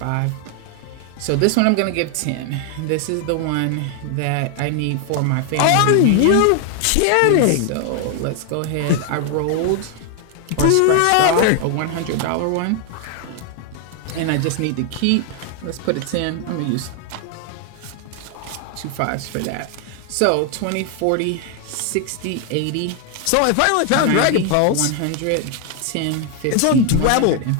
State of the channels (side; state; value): both; different; correlation 0.00